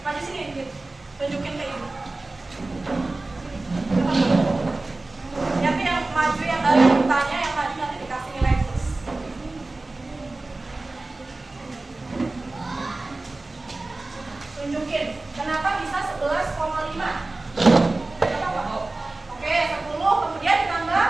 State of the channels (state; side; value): quieter; left; 3.1 dB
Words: Majid sini, Majid. Tunjukin ke ibu. Nanti yang maju yang dari tanya, yang maju nanti dikasih nilai plus. Tunjukin, kenapa bisa 11,5? Kenapa? Oke, 10, kemudian ditambah